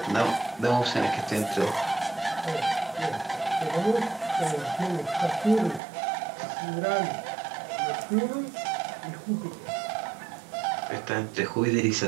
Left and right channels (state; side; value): drops out; left; at 5.8 s